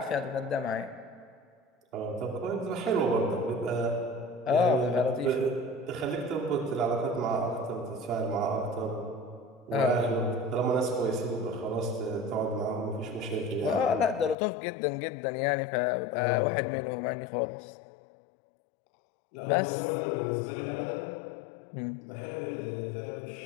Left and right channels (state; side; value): drops out; right; at 14.4 s